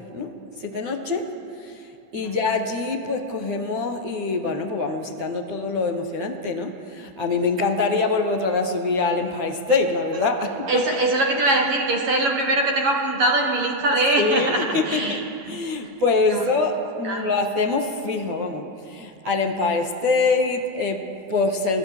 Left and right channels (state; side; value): late; left; 11 ms